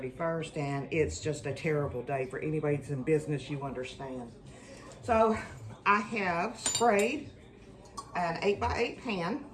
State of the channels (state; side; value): identical; both; correlation 1.00